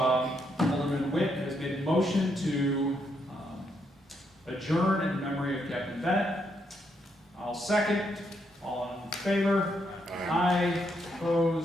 Alderman Witt has made a motion to adjourn in memory of Captain Bennett. I'll second. All in favor? Aye.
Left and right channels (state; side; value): normal; both; correlation 0.77